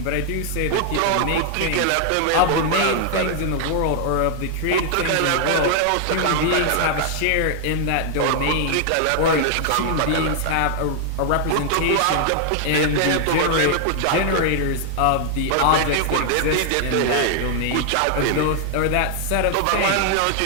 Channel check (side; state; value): both; different; correlation 0.00